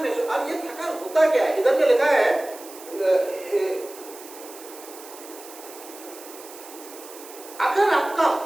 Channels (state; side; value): noise; right; hiss, 17 dB below the sound